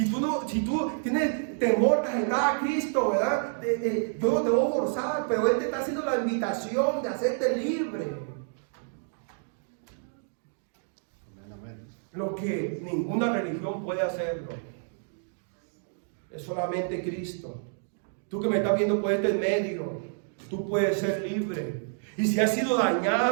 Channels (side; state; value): left; silent; digital silence